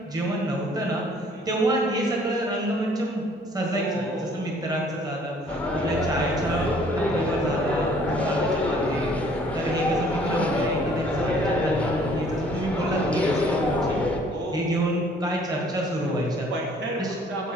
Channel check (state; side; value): normal; both; correlation 0.58